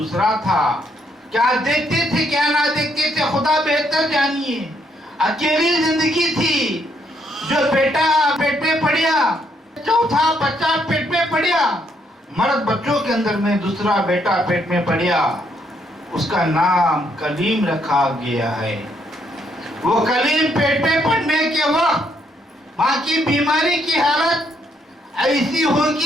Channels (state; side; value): normal; both; correlation 0.73